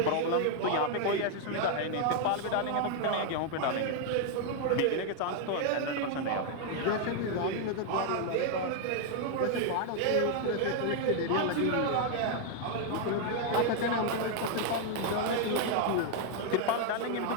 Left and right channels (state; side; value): different; both; correlation 0.00